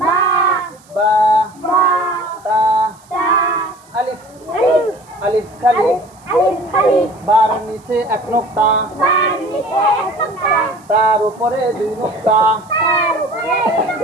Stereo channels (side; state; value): right; noise; hiss, 29 dB below the sound